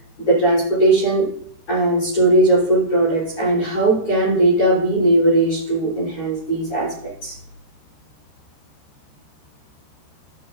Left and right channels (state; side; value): late; right; 13 ms